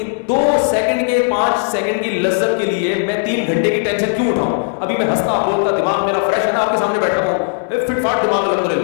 2 سیکنڈ کے 5 سیکنڈ کی لذت کے لیے میں 3 گھنٹے کی ٹینشن کیوں اٹھاؤں؟ ابھی میں ہنستا بولتا دماغ میرا فریش ہے نا, آپ کے سامنے بیٹھا ہوں, فٹ فاٹ دماغ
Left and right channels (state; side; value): silent; right; 68 dB below the other